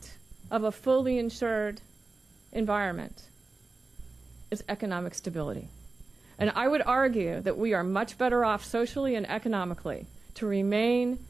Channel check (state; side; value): quieter; left; 3.6 dB